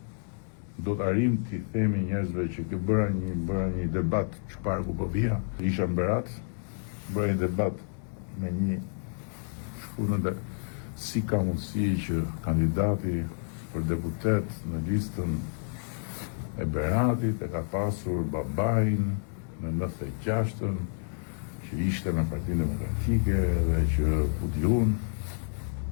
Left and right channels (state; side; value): silent; right; digital silence